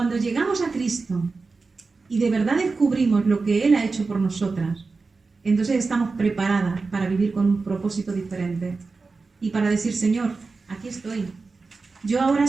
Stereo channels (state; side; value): quieter; left; 4.1 dB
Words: llegamos a Cristo y de verdad descubrimos lo que Él ha hecho por nosotras, entonces estamos preparadas para vivir con un propósito diferente y para decir, Señor, aquí estoy. Yo ahora